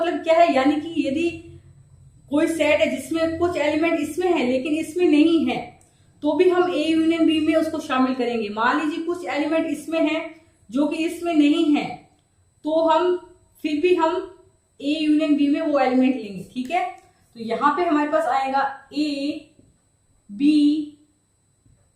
क्या है, यानी कि यदि कोई सेट है जिसमें कुछ एलिमेंट इसमें है लेकिन इसमें नहीं है, तो भी हम A यूनियन B में उसको शामिल करेंगे। मान लीजिए कुछ एलिमेंट इसमें है जो कि इसमें नहीं है, तो हम फिर भी हम A यूनियन B में वो एलिमेंट लेंगे। ठीक है, तो यहां पे हमारे पास आएगा A B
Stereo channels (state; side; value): identical; both; correlation 1.00